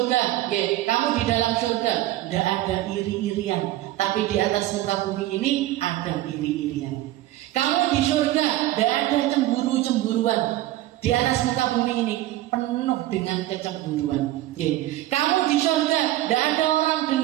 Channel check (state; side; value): quieter; left; 15.4 dB